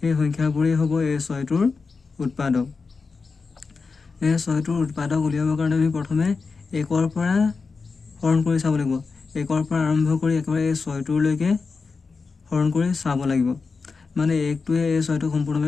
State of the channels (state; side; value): quieter; right; 4.6 dB